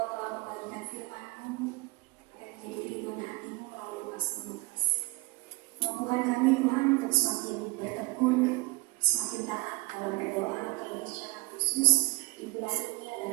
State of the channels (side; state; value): left; quieter; 24.2 dB